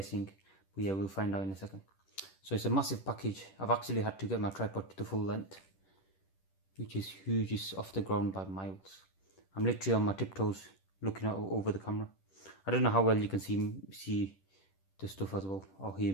but yeah, we'll find out in a second. So it's a massive package. I've actually had to get my tripod to the full length, which is huge. It's off the ground by miles. I'm literally on my tiptoes looking out over the camera. I don't know how well you can see the stuff as well, or hear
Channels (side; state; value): right; late; 10 ms